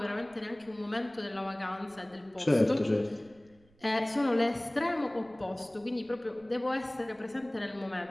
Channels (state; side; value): noise; right; rumble, 30 dB below the sound